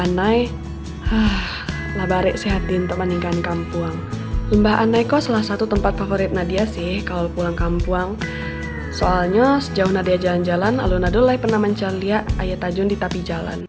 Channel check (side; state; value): both; identical; correlation 1.00